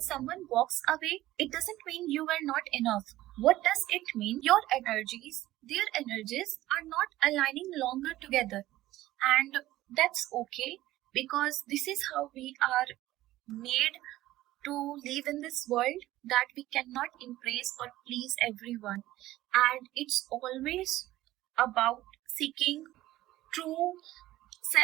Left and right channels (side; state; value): left; quieter; 15.8 dB